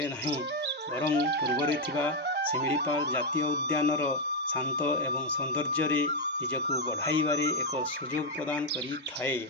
नहीं, बरं पूर्वरे थिबा शिमिलीपाल जातीय उद्यानर शांत एवं सौंदर्य निजकू बढ़ाइबारे एक सुजोग प्रदान करि थाए।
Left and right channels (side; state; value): both; normal; correlation 0.02